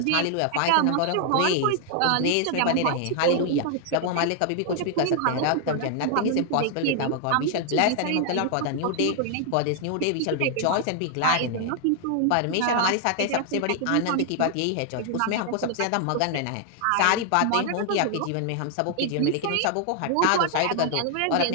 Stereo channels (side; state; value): both; different; correlation 0.00